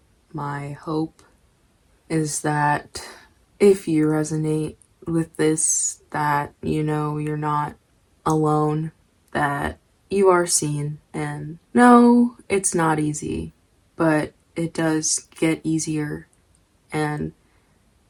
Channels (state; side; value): identical; both; correlation 1.00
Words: my hope, is that if you resonate with this, that you know you're not alone, that you are seen. And no, it's not easy, but it does get easier, and